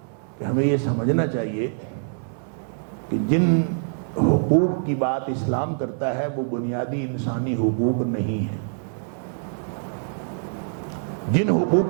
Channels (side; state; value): left; silent; 62 dB below the other